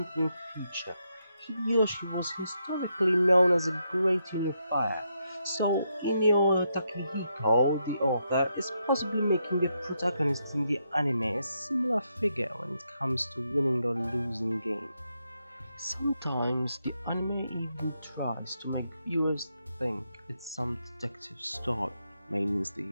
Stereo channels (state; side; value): inverted; both; correlation -0.80